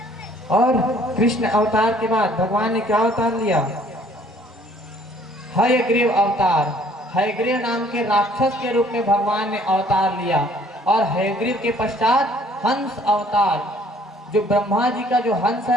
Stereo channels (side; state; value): both; normal; correlation 0.59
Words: और कृष्ण अवतार के बाद भगवान ने क्या अवतार लिया, हयग्रीव अवतार, हयग्रीव नाम के राक्षस के रूप में भगवान ने अवतार लिया। और हयग्रीव के पश्चात हंस अवतार, जो ब्रह्मा जी का जो हंस